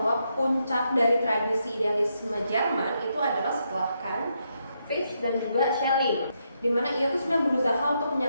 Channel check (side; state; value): both; inverted; correlation -0.80